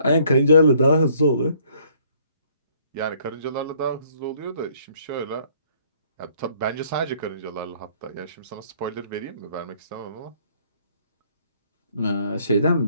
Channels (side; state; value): both; inverted; correlation -0.62